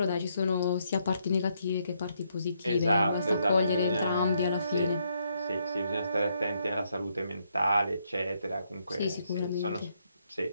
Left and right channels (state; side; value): inverted; both; correlation -0.75